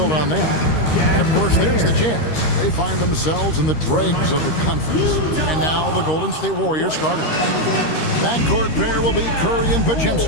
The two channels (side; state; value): right; late; 13 ms